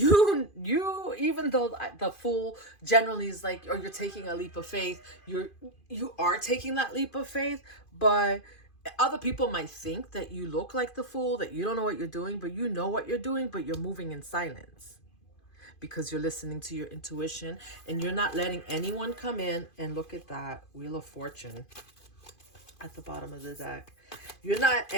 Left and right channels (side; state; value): right; late; 2.5 ms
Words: though the Fool generally is like, or you're taking a leap of faith, you are taking that leap of faith, but other people might think that you look like the Fool, that you don't know what you're doing, but you know what you're doing, but you're moving in silence because you're listening to your intuition, and you're not letting anyone come in. And look at that Wheel of Fortune at the bottom of the deck. You're not,